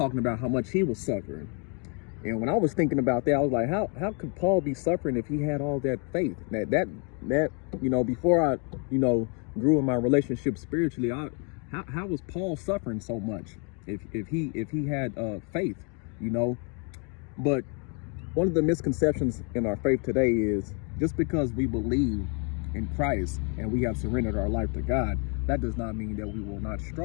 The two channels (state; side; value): quieter; right; 36.4 dB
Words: about how much he was suffering. And when I was thinking about that, I was like, how could Paul be suffering if he had all that faith? That before I, grew in my relationship spiritually, how was Paul suffering so much if he had faith, But one of the misconceptions in our faith today is just because we believe in Christ and we have surrendered our life to God, that does not mean that we will not